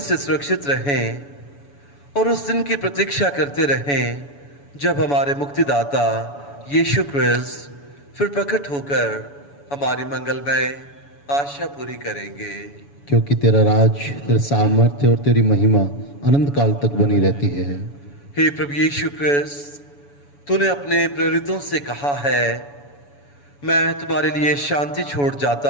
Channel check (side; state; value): right; late; 7.0 ms